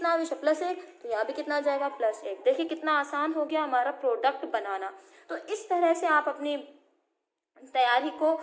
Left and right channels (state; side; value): identical; both; correlation 1.00